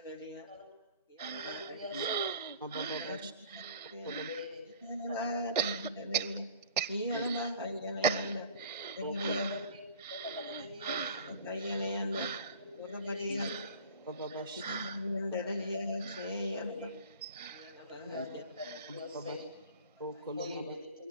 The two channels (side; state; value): both; inverted; correlation -0.45